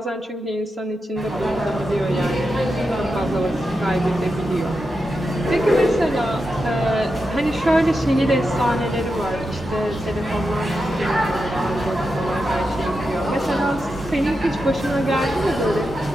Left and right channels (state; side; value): normal; both; correlation 0.88